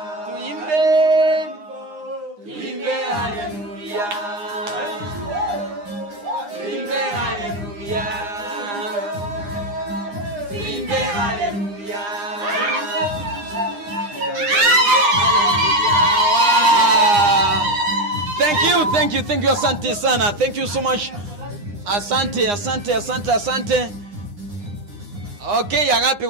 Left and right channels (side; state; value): left; late; 9.8 ms